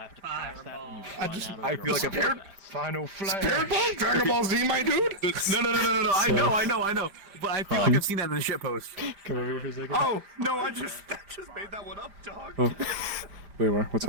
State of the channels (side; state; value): left; late; 5.0 ms